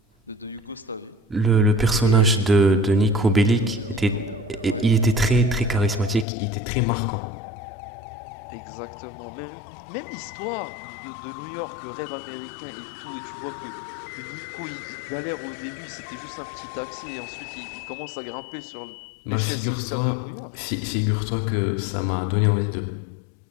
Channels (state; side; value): drops out; right; at 6.2 s